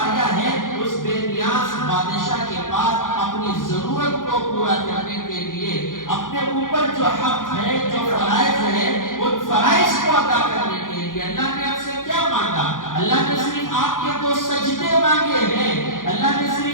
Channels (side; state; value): right; late; 0.89 ms